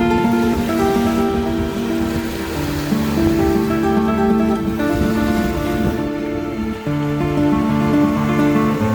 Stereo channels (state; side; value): identical; both; correlation 1.00